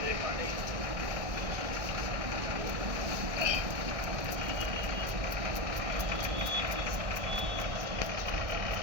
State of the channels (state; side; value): late; left; 1.6 ms